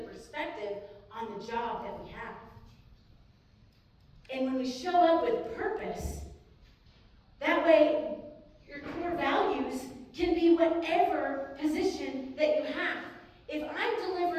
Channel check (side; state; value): both; identical; correlation 1.00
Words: perspective on the job that we have. And when we show up with purpose, that way your core values can be whatever position that you have. If I'm